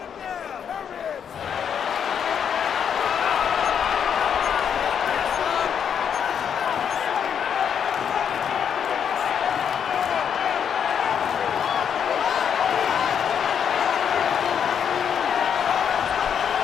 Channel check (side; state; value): right; quieter; 8.0 dB